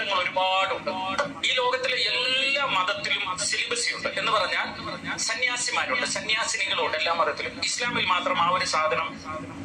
ഒരുപാടുണ്ട്. ഈ ലോകത്തിലെ എല്ലാ മതത്തിലും സിലിബസി ഉണ്ട്. എന്ന് പറഞ്ഞാൽ സന്യാസിമാരുണ്ട്, സന്യാസിനികളുണ്ട് എല്ലാ മതത്തിലും. ഇസ്ലാമിൽ മാത്രം ആ ഒരു സാധനം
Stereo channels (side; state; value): both; identical; correlation 1.00